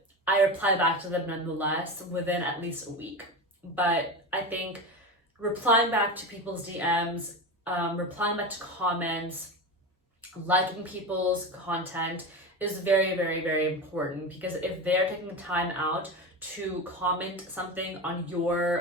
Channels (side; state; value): both; normal; correlation 0.22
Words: I reply back to them nonetheless within at least a week. But I think replying back to people's DMs, replying back to comments, liking people's content is very, very, very important, because if they're taking time out to comment something on